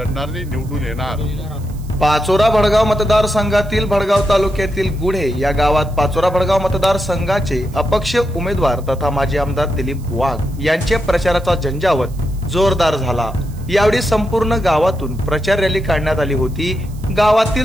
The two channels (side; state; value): right; noise; hiss, 25 dB below the sound